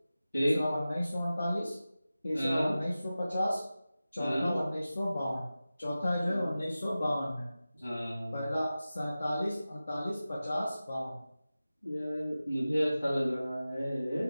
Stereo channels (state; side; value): inverted; both; correlation -0.95